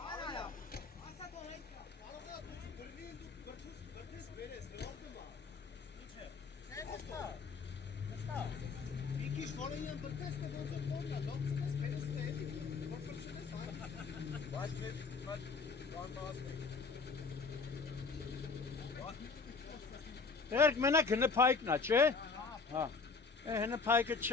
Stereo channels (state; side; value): quieter; right; 4.6 dB